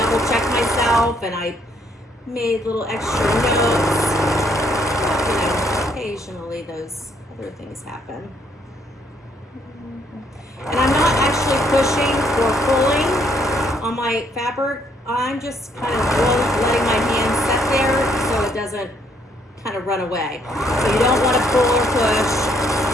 checked myself and I made little extra notes. But, you know, occasionally those other things happen. And I'm not actually pushing or pulling on my fabric. I'm just kind of letting my hand set there so it doesn't kind of run away. So you don't want to pull or push.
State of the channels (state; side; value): normal; both; correlation 0.69